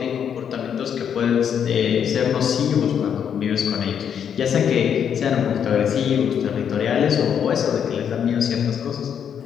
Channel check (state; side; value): quieter; right; 8.2 dB